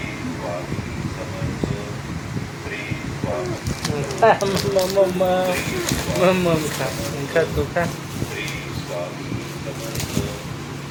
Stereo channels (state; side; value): identical; both; correlation 1.00